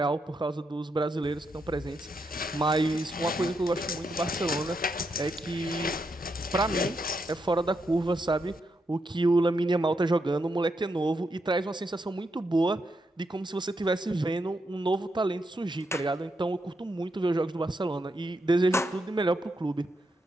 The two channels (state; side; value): normal; both; correlation 0.81